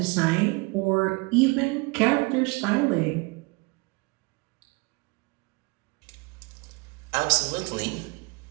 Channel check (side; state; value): left; quieter; 28.0 dB